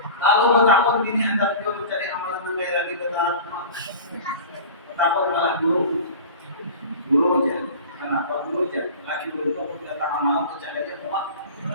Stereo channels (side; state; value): both; inverted; correlation -0.36